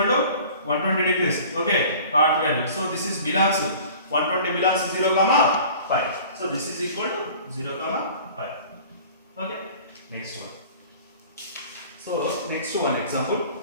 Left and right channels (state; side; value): inverted; both; correlation -0.45